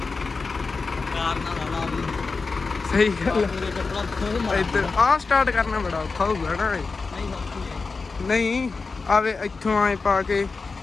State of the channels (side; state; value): right; quieter; 4.3 dB